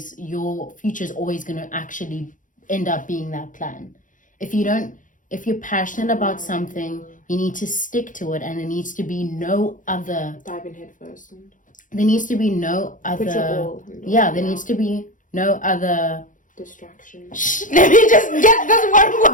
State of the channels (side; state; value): right; late; 0.38 ms